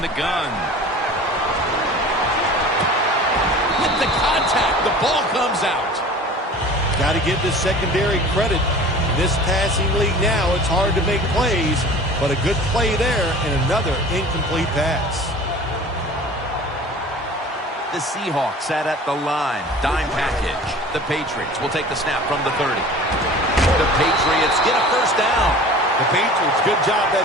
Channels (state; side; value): normal; both; correlation 0.42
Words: the gun. With the contact, the ball comes out. Got to give the secondary credit. In this passing league now, it's hard to make plays, but a good play there and another incomplete pass. The Seahawks sat at the line. Dime package. The Patriots will take the snap from the 30. The Patriots get a first down. The Patriots, good job